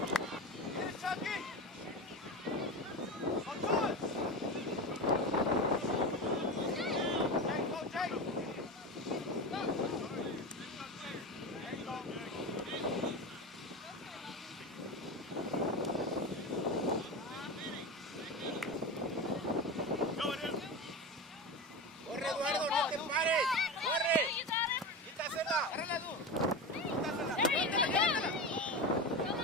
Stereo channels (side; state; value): both; normal; correlation 0.23